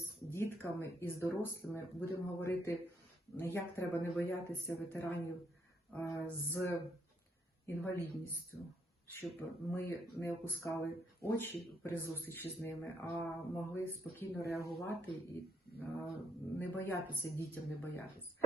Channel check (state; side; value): normal; both; correlation 0.70